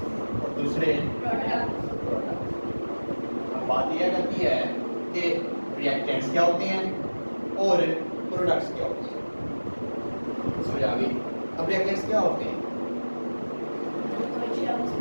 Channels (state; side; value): inverted; both; correlation -1.00